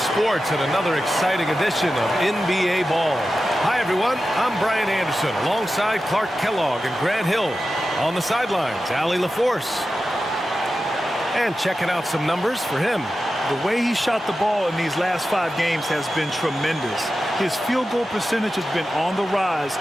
and another exciting edition of NBA Ball. Hi, everyone. I'm Brian Anderson alongside Clark Kellogg and Grant Hill. On the sidelines, Allie LaForce. And checking out some numbers for him. The way he shot the ball in these last 5 games has been tremendous. His field goal percentage has been on the rise,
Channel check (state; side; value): normal; both; correlation 0.92